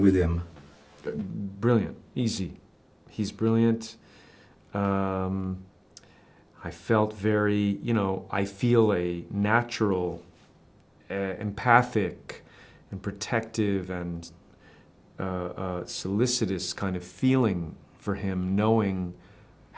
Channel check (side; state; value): both; identical; correlation 1.00